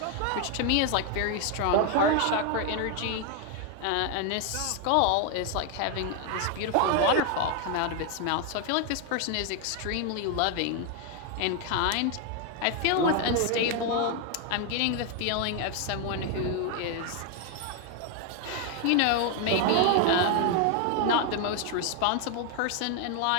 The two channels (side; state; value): both; different; correlation 0.01